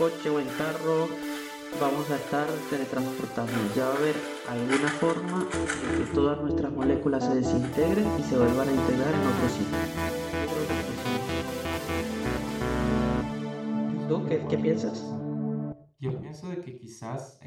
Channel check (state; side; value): identical; both; correlation 1.00